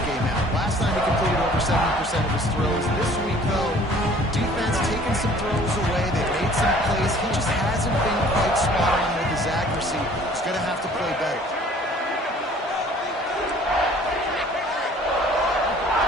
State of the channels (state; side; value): normal; both; correlation 0.53